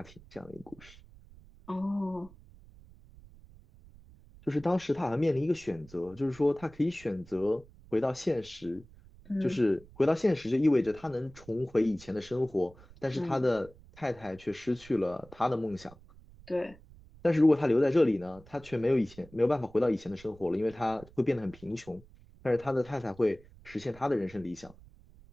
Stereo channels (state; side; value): noise; right; rumble, 23 dB below the sound